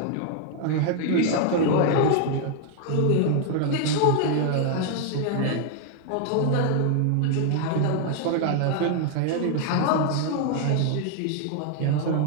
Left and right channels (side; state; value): both; different; correlation 0.00